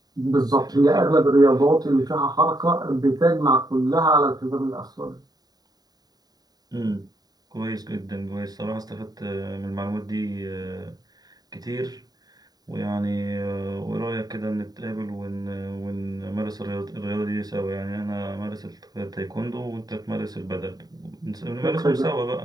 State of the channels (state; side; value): late; left; 0.19 ms